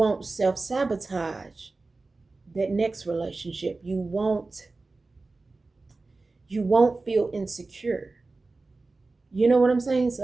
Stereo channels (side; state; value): left; quieter; 3.5 dB